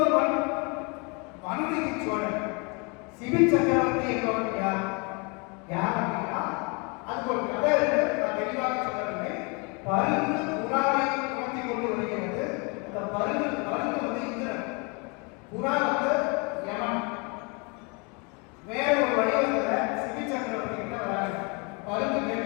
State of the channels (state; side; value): quieter; right; 31.8 dB